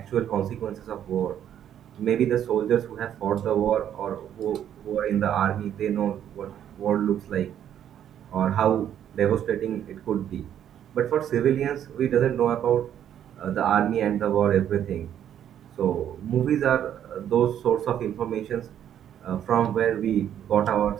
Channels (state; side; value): quieter; left; 10.1 dB